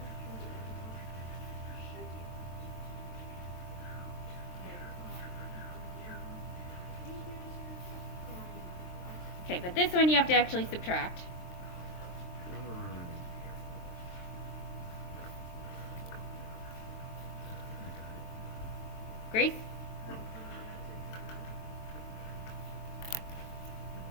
Okay, but this one you have to actually subtract. Grace?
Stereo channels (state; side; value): late; right; 23 ms